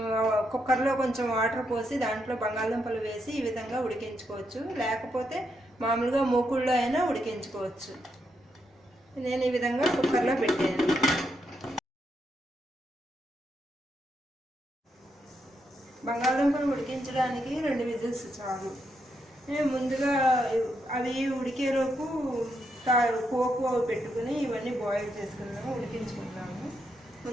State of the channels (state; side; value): normal; both; correlation 0.80